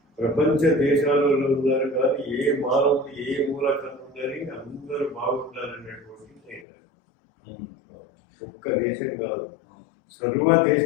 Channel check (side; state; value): right; drops out; at 6.7 s